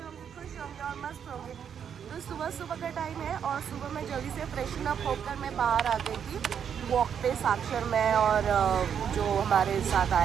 होंगे, खुश होंगे और मस्त होंगे। तो सुबह सुबह का टाइम है और सुबह मैं जल्दी से फ्रेशन अप होकर मैं बाहर आ गई थी वॉक पे, साक्षर में और जो हमारे साथ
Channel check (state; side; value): quieter; left; 8.0 dB